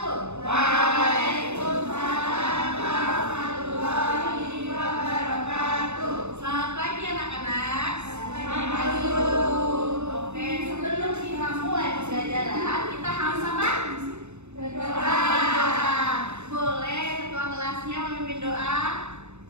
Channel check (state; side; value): late; left; 0.82 ms